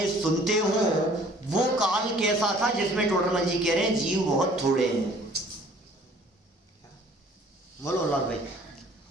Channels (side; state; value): both; normal; correlation 0.54